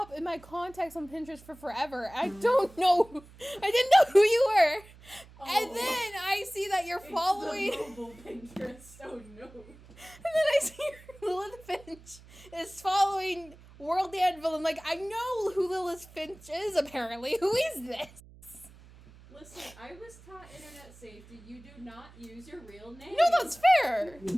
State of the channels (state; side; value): noise; right; hum, 22 dB below the sound